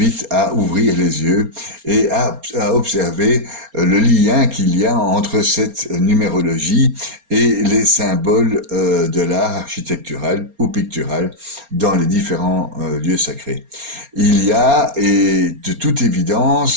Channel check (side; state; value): left; late; 4.3 ms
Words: à ouvrir les yeux et à observer le lien qu'il y a entre cette numérologie et les symboles de l'art architectural ou pictural dans les différents lieux sacrés. Il y a, et de toute